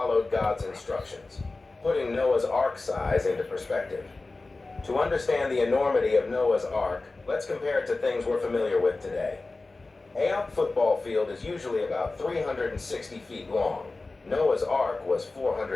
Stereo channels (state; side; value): quieter; right; 3.4 dB